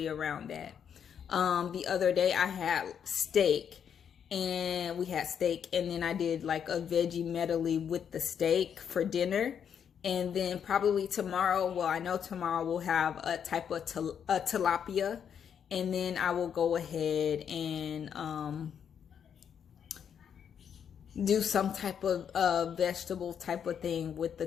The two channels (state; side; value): quieter; right; 8.0 dB